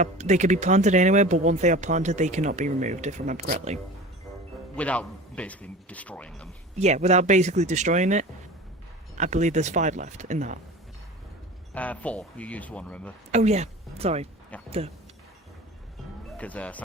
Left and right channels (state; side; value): normal; both; correlation 0.36